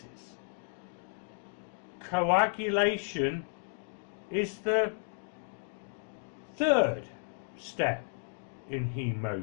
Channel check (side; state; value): right; silent; digital silence